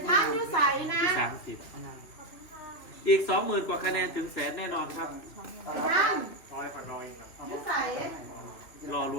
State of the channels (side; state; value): right; late; 3.2 ms